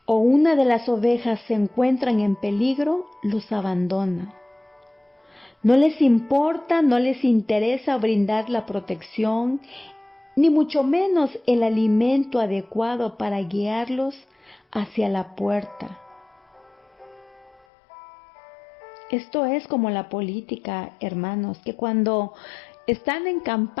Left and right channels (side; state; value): right; drops out; at 17.6 s